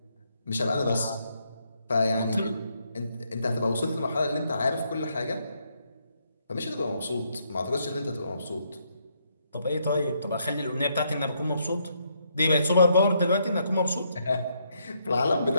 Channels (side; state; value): both; inverted; correlation -0.75